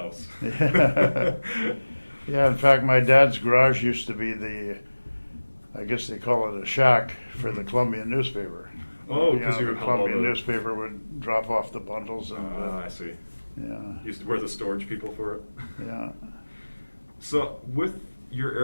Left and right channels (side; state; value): both; inverted; correlation -1.00